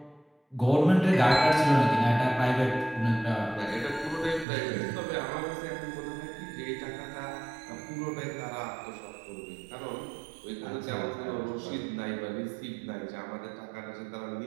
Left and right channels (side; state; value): left; drops out; at 4.5 s